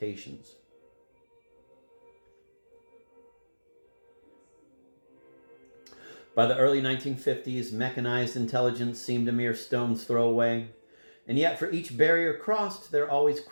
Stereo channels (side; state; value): both; inverted; correlation -1.00